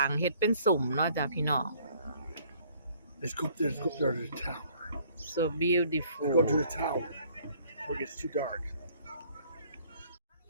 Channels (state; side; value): inverted; both; correlation -0.59